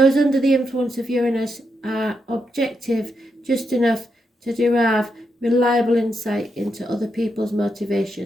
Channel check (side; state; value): both; normal; correlation 0.83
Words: under the influence of Uranus are objective just enough to derive reliable insight into other people's